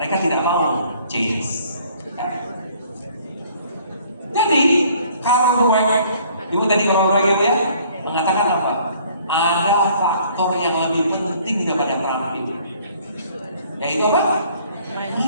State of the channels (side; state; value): both; inverted; correlation -0.58